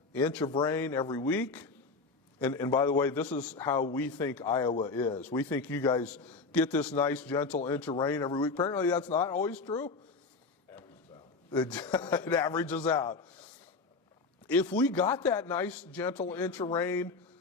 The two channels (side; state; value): right; quieter; 4.1 dB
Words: inch of rain every week, and by the way, this is how we think Iowa is. We think you guys get this nice, gentle inch of rain every week. Apparently that's not always true. It averages out. If we got that nice, gentle inch of rain,